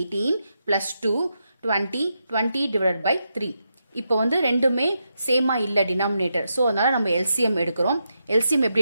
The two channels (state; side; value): inverted; both; correlation -0.84